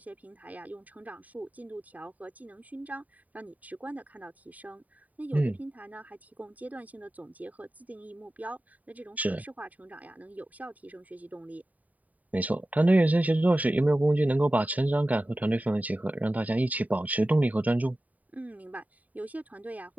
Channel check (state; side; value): late; left; 0.073 ms